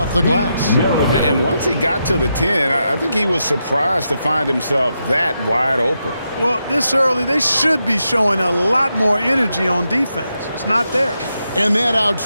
the glass. And once he got to the 10, I think he was surprised to find himself that wide open. Well, this early, they should be showing a lot more energy on defense. It's not there. And that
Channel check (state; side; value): inverted; both; correlation -0.84